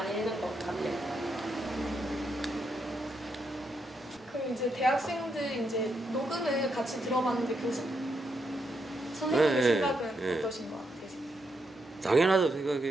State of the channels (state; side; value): normal; both; correlation 0.80